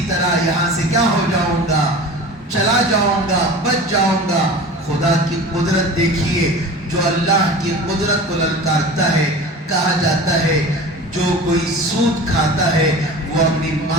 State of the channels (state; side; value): normal; both; correlation 0.36